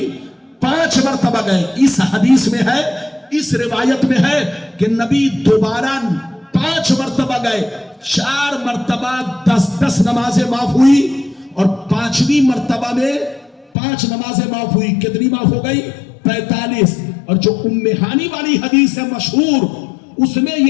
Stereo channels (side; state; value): right; drops out; at 13.7 s